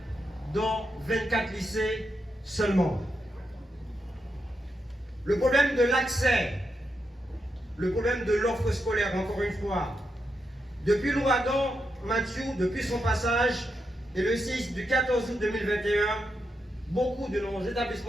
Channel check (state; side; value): normal; both; correlation 0.84